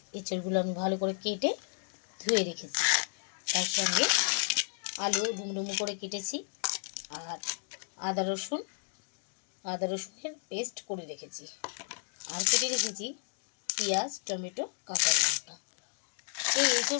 এঁচোড়গুলো আমি ভালো করে কেটে ধুয়ে রেখেছি। তার সঙ্গে আলু ডুমডুমু করে কেটেছি, আর আদা রসুনের পেস্ট করে রেখেছি, আর কেটে রেখেছি পেঁয়াজ, টমেটো, কাঁচা লঙ্কা। এই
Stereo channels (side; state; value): right; silent; 56 dB below the other